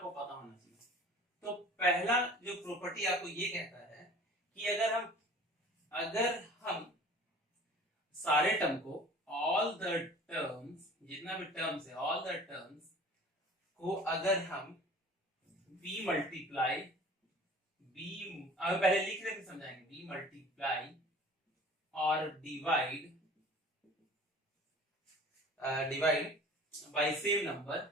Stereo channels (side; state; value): both; normal; correlation 0.45